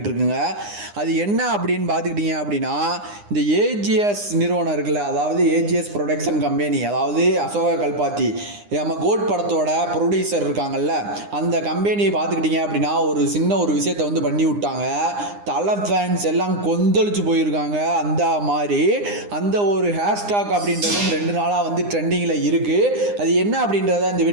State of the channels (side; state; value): left; late; 9.8 ms